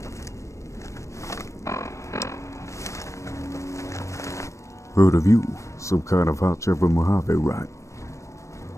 Heard of you. Some kind of hot chopper Mojave, right?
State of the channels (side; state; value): right; late; 0.15 ms